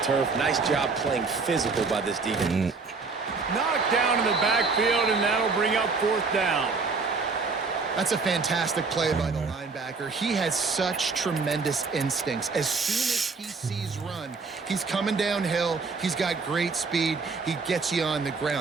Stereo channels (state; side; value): quieter; left; 4.4 dB